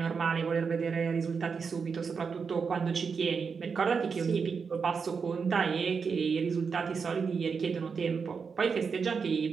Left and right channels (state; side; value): quieter; left; 5.6 dB